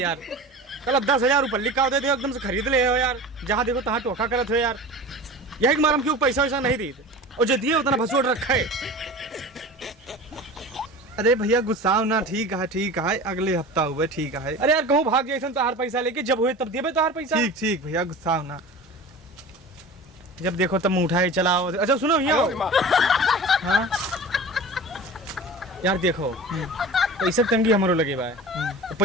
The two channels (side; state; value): both; normal; correlation 0.35